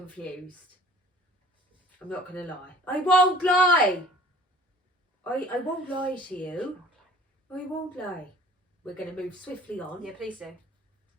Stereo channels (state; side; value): normal; both; correlation 0.49